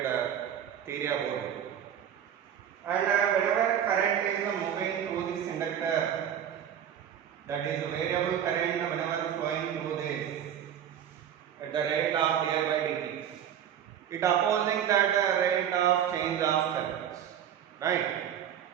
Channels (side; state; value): left; quieter; 9.5 dB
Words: theory about it. And whenever current is moving through this inductor, that is variable current whenever flowing through this at the rate of di by dt, it opposing that rate of change of current, right?